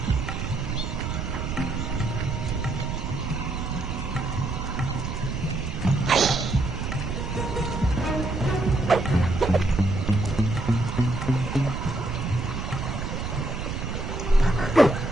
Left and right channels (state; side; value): noise; right; rumble, 4 dB below the sound